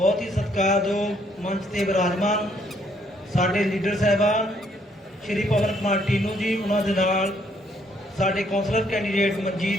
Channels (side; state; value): both; normal; correlation 0.68